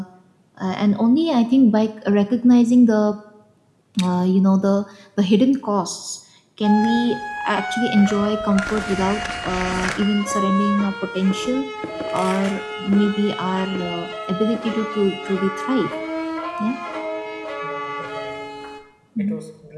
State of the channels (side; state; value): both; identical; correlation 1.00